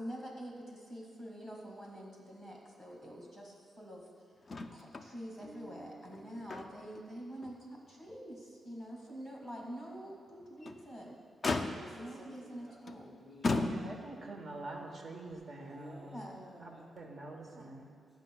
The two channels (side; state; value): both; normal; correlation 0.88